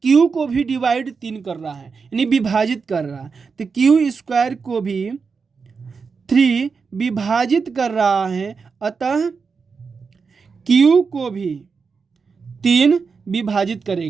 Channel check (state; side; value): quieter; left; 5.2 dB